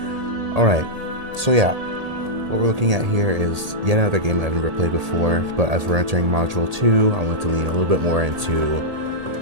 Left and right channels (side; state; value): left; late; 1.8 ms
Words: Alright, so yeah, what we're looking at here is yet another game I've never played before, but as we're entering Module 2, I want to lean a little bit more into